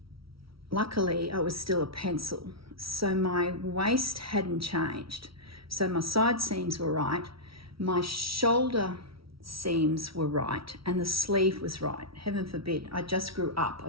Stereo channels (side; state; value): left; late; 0.75 ms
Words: luckily I was still a pencil, so my waist hadn't changed. So my side seams were right, my shoulder seams were right, and the sleeve was right. Heaven forbid, I just grew up, I